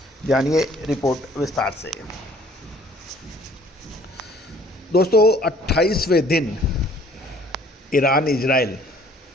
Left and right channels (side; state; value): both; normal; correlation 0.56